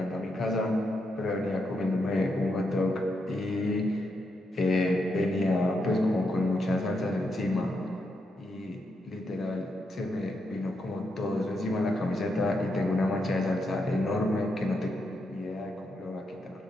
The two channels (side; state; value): both; normal; correlation 0.82